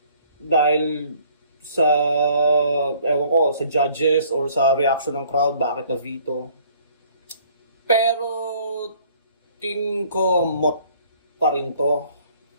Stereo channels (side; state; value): both; inverted; correlation -0.58